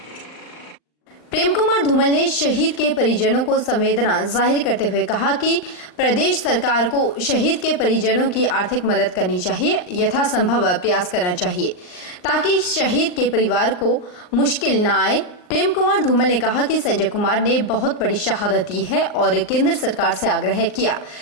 प्रेम कुमार धूमल ने शहीद के परिजनों को संवेदना जाहिर करते हुए कहा कि प्रदेश सरकार को शहीद के परिजनों की आर्थिक मदद करनी चाहिए, यथासंभव प्रयास करना चाहिए ताकि शहीद के परिवार को मुश्किल न आए। प्रेम कुमार धूमल ने कहा कि संजय कुमार ने बहुत बड़ी शहादत दी है और केंद्र सरकार से आग्रह किया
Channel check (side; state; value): right; late; 39 ms